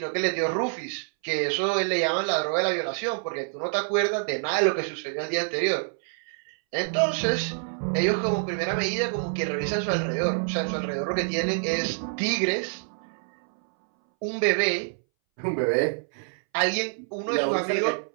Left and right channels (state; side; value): silent; left; 60 dB below the other